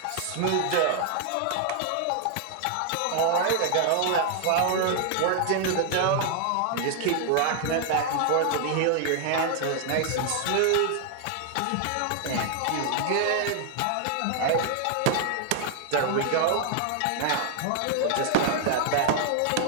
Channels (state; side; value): different; both; correlation 0.00